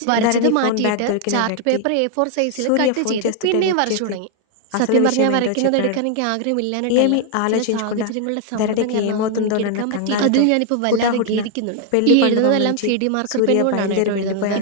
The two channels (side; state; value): both; different; correlation 0.00